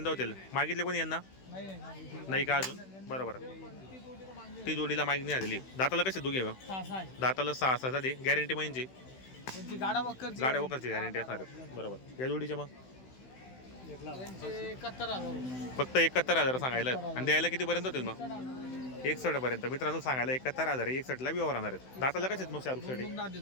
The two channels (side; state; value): right; late; 16 ms